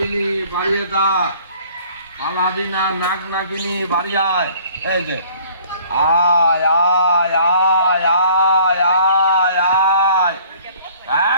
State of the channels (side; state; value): both; inverted; correlation -0.54